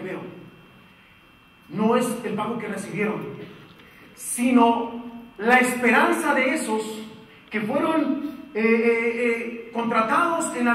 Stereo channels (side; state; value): both; identical; correlation 1.00